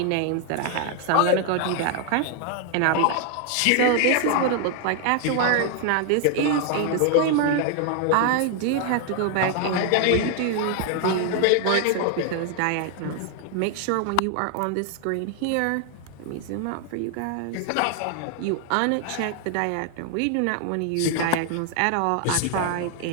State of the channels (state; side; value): different; both; correlation 0.00